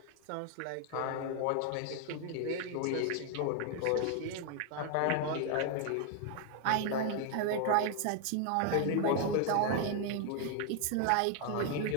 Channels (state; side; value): different; both; correlation 0.00